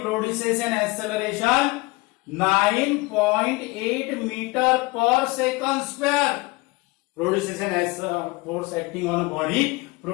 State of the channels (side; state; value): right; quieter; 24.0 dB